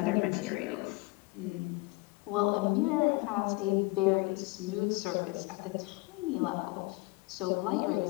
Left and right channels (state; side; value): quieter; right; 24.4 dB